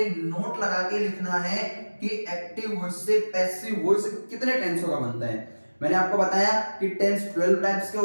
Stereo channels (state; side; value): inverted; both; correlation -1.00